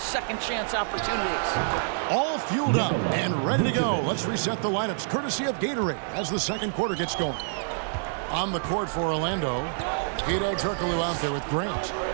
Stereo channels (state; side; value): silent; left; digital silence